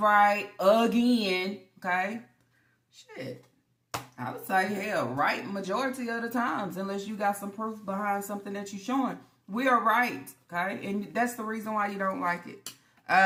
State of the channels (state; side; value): identical; both; correlation 1.00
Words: again. Okay? Shit. I would say, hell, right majority of the times, unless you got some proof behind something that you're showing. We are right, okay? And that's the reason why you don't like it.